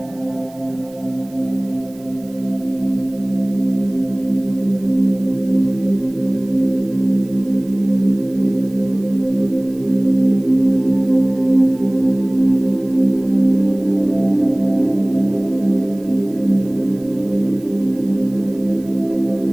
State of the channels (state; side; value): noise; right; hiss, 26 dB below the sound